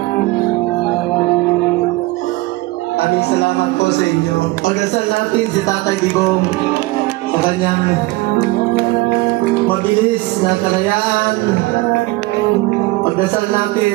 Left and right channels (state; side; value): quieter; left; 20.9 dB